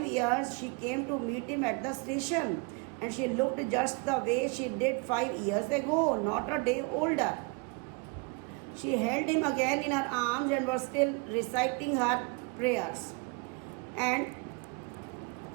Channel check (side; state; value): left; quieter; 30.6 dB